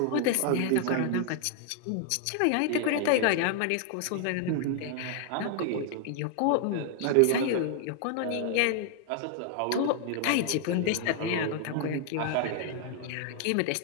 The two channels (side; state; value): both; different; correlation 0.00